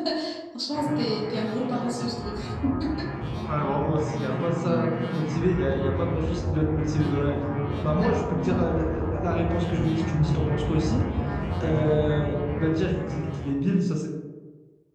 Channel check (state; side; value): identical; both; correlation 1.00